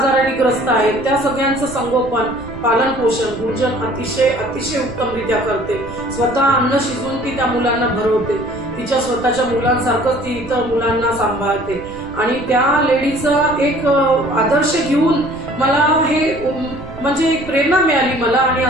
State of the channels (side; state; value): right; noise; rumble, 15 dB below the sound